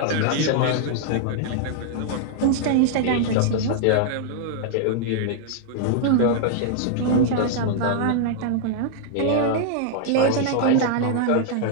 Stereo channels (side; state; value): both; different; correlation -0.01